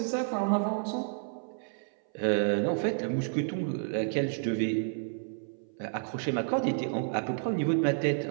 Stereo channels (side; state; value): left; silent; 56 dB below the other